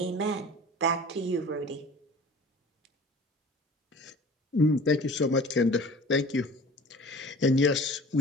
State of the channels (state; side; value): normal; both; correlation 0.43